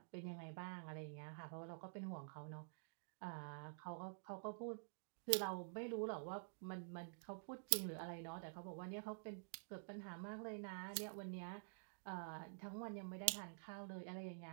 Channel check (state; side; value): silent; left; digital silence